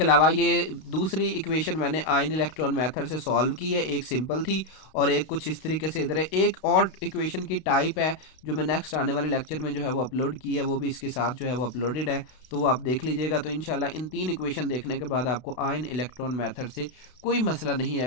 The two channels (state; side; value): late; right; 32 ms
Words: अलावा ये दूसरी इक्वेशन मैंने आयन इलेक्ट्रॉन मेथड से सॉल्व की है, एक सिंपल थी और एक कुछ इस तरीके से इधर है। एक और इक्वेशन की टाइप है जो मैं नेक्स्ट आने वाले लेक्चर में जो है वो अपलोड की है, वो भी इसके साथ जो है वो अपलोडेड है, तो वो आप देख लीजिएगा। तो इंशाल्लाह इन 3 इक्वेशन देखने के बाद आपको आयन इलेक्ट्रॉन मेथड से कोई मसला नहीं